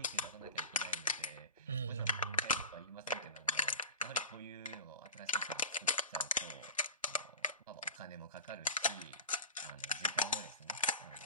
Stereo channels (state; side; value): inverted; both; correlation -0.33